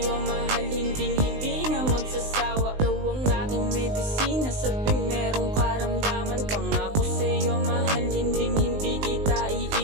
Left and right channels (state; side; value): late; left; 19 ms